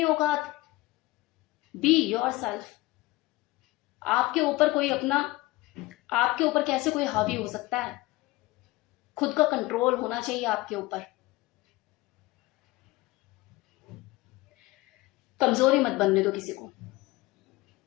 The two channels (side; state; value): right; quieter; 19.9 dB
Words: औकात, बी योरसेल्फ। आपके ऊपर कोई अपना, आपके ऊपर कैसे कोई हावी हो सकता है? खुद का कंट्रोल होना चाहिए आपके ऊपर। कमजोरी मत बनने दो किसी को,